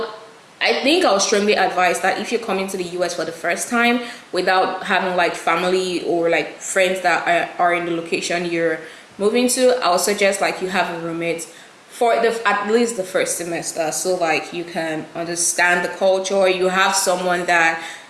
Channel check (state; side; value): identical; both; correlation 1.00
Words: I think I'll strongly advise that if you're coming to the US for the first time without having like family or like friends that are in the location you're moving to, I'll suggest like you have a roommate for at least the first semester, so like you can understand the culture, you have someone that